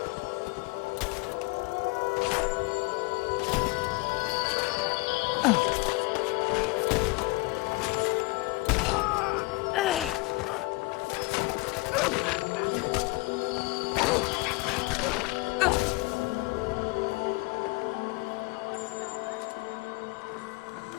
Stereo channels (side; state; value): right; quieter; 24.3 dB